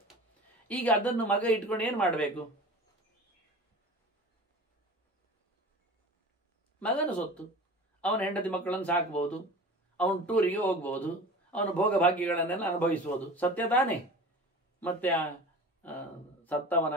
ಈಗ ಅದನ್ನು ಮಗ ಇಟ್ಕೊಂಡು ಏನು ಮಾಡಬೇಕು? ಮಗನ ಸೊತ್ತು, ಅವನ ಹೆಂಡತಿ ಮಕ್ಕಳನ್ನು ಸಾಕ್ಬೋದು, ಅವನು ಟೂರಿಗೆ ಹೋಗ್ಬೋದು, ಅವನ ಭೋಗ ಭಾಗ್ಯಗಳನ್ನೆಲ್ಲ ಅನುಭವಿಸ್ಬೋದು, ಸತ್ಯ ತಾನೇ? ಮತ್ತೆ ಸತ್ತವನ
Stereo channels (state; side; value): normal; both; correlation 0.37